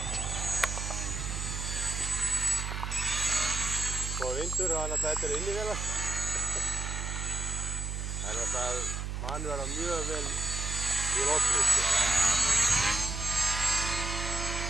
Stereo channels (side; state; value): right; noise; hum, 3 dB below the sound